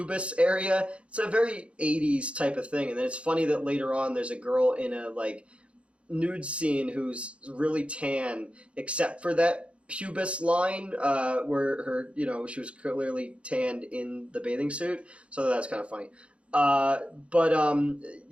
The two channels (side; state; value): left; late; 0.060 ms